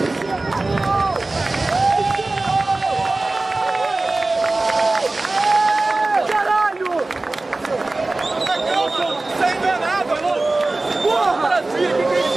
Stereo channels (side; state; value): left; quieter; 3.1 dB